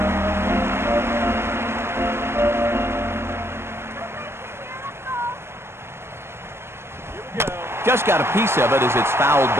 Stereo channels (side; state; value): left; late; 0.12 ms